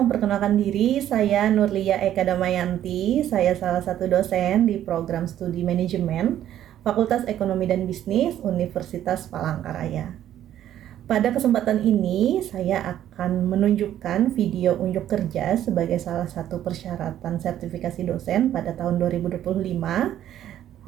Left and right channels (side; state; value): left; quieter; 11.5 dB